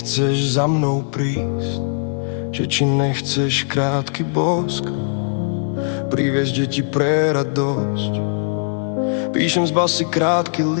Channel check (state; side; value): silent; right; 55 dB below the other